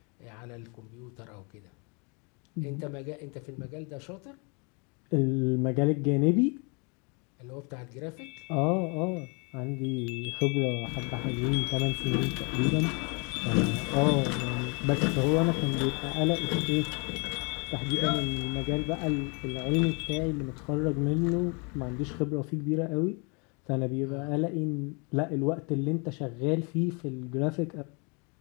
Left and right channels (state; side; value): quieter; right; 33.6 dB